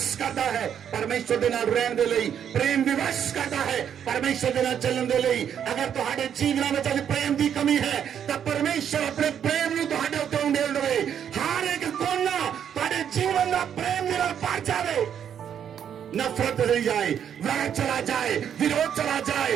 करता है परमेश्वर दे नाल रहण दे लई। प्रेम विवश करता है परमेश्वर दे नाल चलण दे लई। अगर तुहाडे जीवन में अज प्रेम की कमी है तो परमेश्वर अपने प्रेम नूं तुहाडे उत्ते उंडेल देवे। हर एक कोना तुहाडे जीवन का प्रेम दे नाल भर जावे। नफरत चली जाए, वैर चला जाए, विरोध चला जाए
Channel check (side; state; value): left; quieter; 8.8 dB